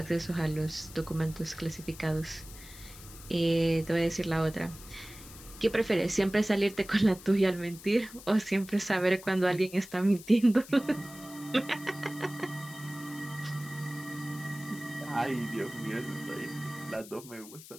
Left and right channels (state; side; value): noise; left; hiss, 17 dB below the sound